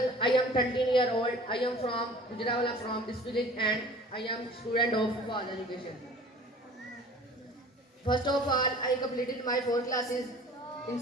I am 13-year-old. I am from Gujarat, from this village, and I am student of Faz Education. First of all, I completed my 4 classes in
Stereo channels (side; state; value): both; normal; correlation 0.45